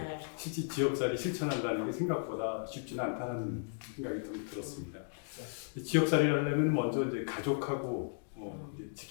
실제 지역살이 실천한다는 게 생각보다 쉽지는 않다는 생각이 좀 들었습니다. 지역살이를 하려면 먼저 이제 가족하고 이제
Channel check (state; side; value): silent; right; digital silence